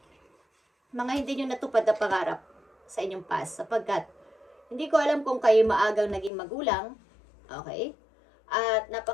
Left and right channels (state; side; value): drops out; right; at 6.3 s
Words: mga hindi nyo natupad na pangarap sa inyong past. Sapagkat, hindi ko alam kung kayo maagang naging magulang. Okay? At